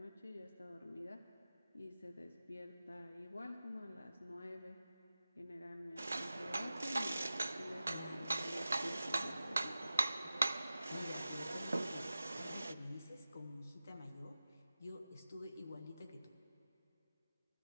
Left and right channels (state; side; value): inverted; both; correlation -0.94